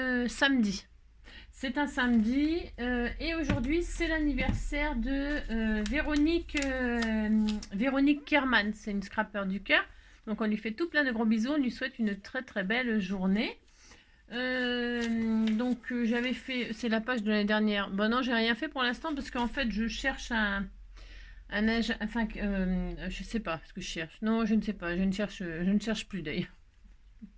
samedi. C'est un samedi et aujourd'hui c'est l'anniversaire de Véronique Kerman. C'est une scrapper du cœur. Donc on lui fait tout plein de gros bisous, on lui souhaite une très très belle journée. J'avais fait, c'est la page de l'année dernière. Bon non, j'ai rien fait pour l'instant parce qu'en fait je cherche je sais pas ce que je cherche. Non, je ne sais pas, je ne cherche plus d'ailleurs.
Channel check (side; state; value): both; identical; correlation 1.00